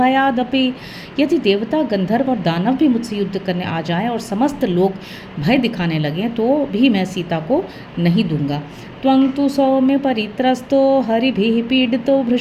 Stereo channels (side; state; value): both; identical; correlation 1.00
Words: यदि देवता, गंधर्व और दानव भी मुझसे युद्ध करने आ जाएं और समस्त लोग भय दिखाने लगें तो भी मैं सीता को नहीं दूंगा। त्वं तु सौम्य परित्रस्तो हरिभिः पीडितो